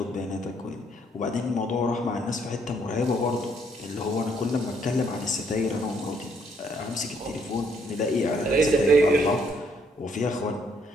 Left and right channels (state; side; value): normal; both; correlation 0.69